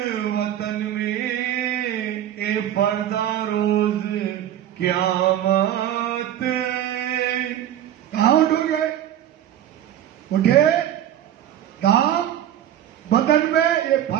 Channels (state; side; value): quieter; left; 11.2 dB